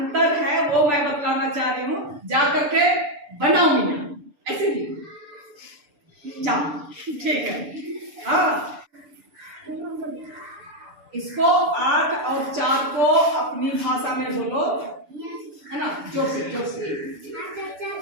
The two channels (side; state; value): left; late; 6.9 ms